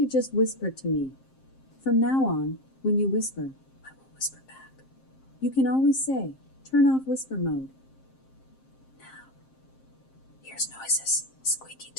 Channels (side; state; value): right; late; 7.6 ms